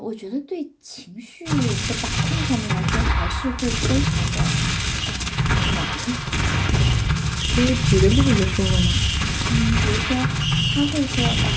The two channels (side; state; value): both; identical; correlation 1.00